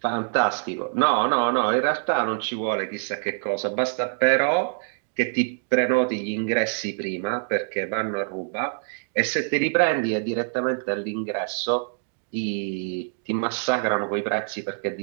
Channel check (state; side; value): silent; left; digital silence